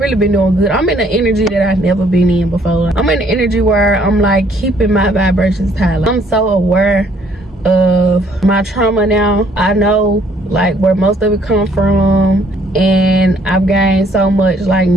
been doing good. I'm in an energy that I've never been in before. I'm in an energy where I'm like keeping my vibrations high. I'm so aware of my trauma now. I know like where most of it come from, and I've gained so much like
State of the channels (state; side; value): normal; both; correlation 0.64